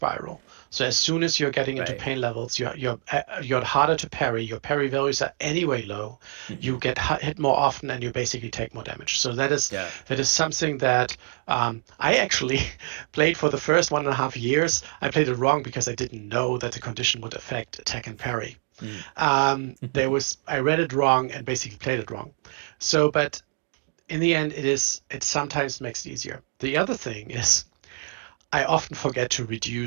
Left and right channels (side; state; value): left; quieter; 39.2 dB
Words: So as soon as you're getting into Right. pain levels, you're harder to parry. Your parry values are anyway low. Hmm. You get hit more often, and you basically take more damage. So Yeah. that is something that I actually played for the first 1.5 years. I played it wrong because I didn't know that the condition would affect attack and parry. Mm. I read it wrong and basically played it wrong. So, but in the end, it sometimes makes it easier. The other thing is I often forget to